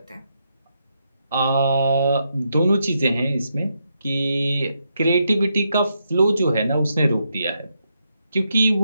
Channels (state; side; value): inverted; both; correlation -0.81